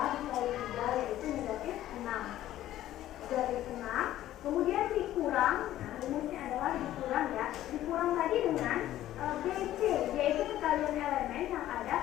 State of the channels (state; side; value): quieter; right; 13.5 dB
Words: 3 yaitu negatif 6. Negatif 6, kemudian dikurang, nah rumusnya adalah dikurang ya. Dikurang tadi dengan BC, yaitu sekalian elemen yang ada